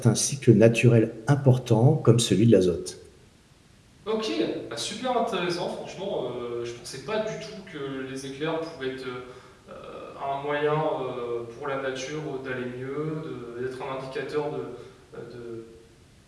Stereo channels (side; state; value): both; identical; correlation 1.00